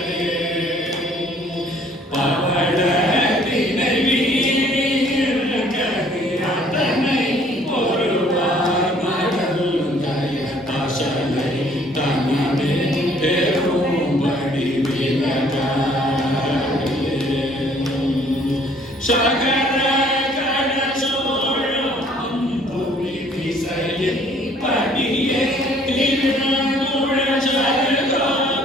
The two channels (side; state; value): both; normal; correlation 0.59